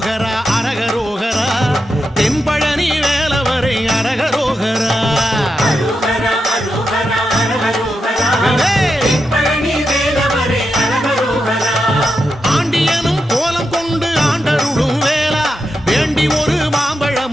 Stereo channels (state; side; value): normal; both; correlation 0.87